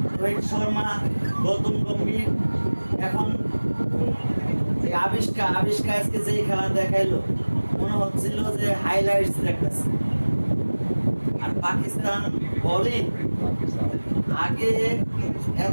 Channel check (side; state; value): both; inverted; correlation -1.00